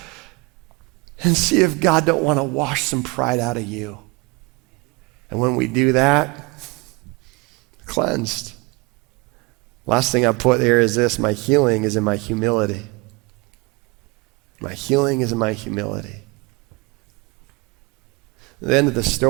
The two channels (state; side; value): quieter; left; 26.1 dB